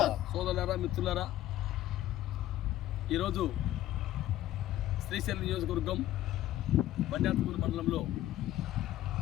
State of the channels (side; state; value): right; quieter; 14.0 dB